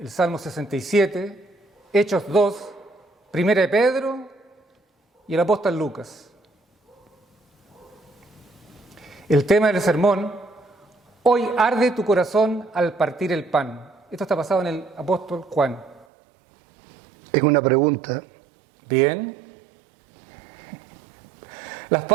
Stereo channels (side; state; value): left; drops out; at 16.1 s